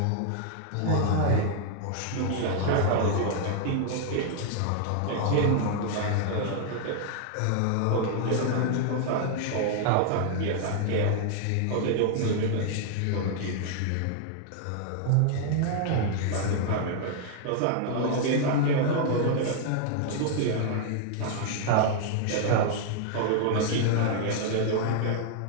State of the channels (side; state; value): both; different; correlation -0.01